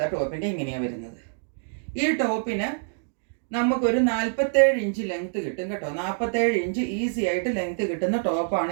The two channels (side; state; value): left; silent; digital silence